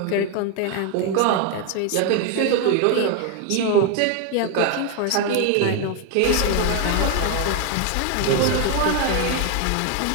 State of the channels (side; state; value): both; different; correlation 0.01